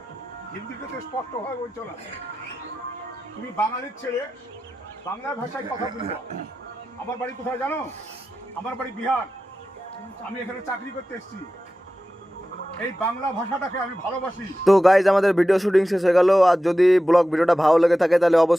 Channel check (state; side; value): normal; both; correlation 0.93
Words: হিন্দিতে তো স্পষ্টভাবে বলছো না। তুমি বাঙালির ছেলে, বাংলা ভাষায় কথা বলবো। আমার বাড়ি কোথায় জানো? আমার বাড়ি বিহার। আমি এখানে চাকরি করতে এসেছি। এই বাংলা ভাষাটাকে আমি ভালোবাসি। তো গাইজ আমাদের ভিডিও শুটিং শেষ হয়ে গেল। আর যদি ব্লগ ভিডিওটা ভালো লেগে থাকে তাহলে